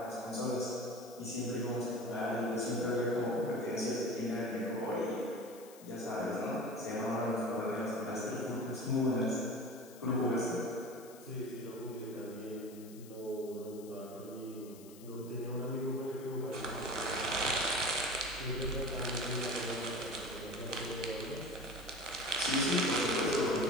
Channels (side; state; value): left; noise; hiss, 20 dB below the sound